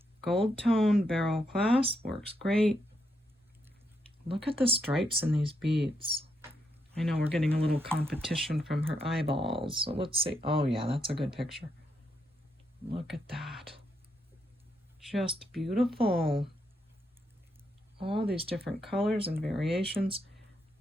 gold tone barrel clasp works great. Look at the stripes in these beads. I know we're getting a little competition from her eyeballs. So let's see. Oh yeah, that's a good picture. Look at that. Just beautiful. All these different colors and variations.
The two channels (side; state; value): both; normal; correlation 0.80